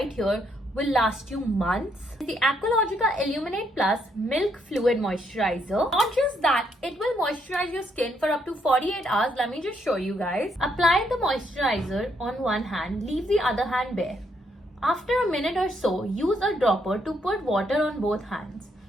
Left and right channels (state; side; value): normal; both; correlation 0.74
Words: here will last you months? The Aqualogica Illuminate Plus Milk Fluid Moisturizer. Not just that, it will moisturize your skin for up to 48 hours. Let me just show you guys. Apply the moisturizer on one hand, leave the other hand bare. After a minute or so, use a dropper to put water on both hands.